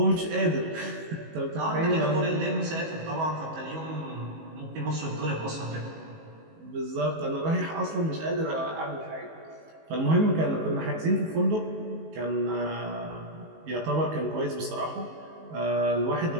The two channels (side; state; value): left; late; 19 ms